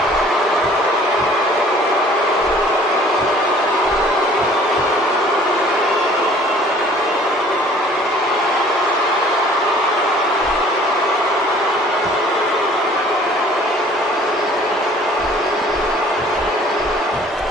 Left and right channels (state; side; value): normal; both; correlation 0.53